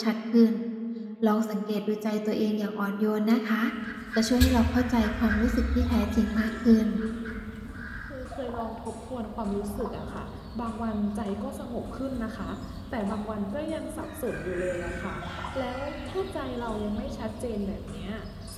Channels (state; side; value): identical; both; correlation 1.00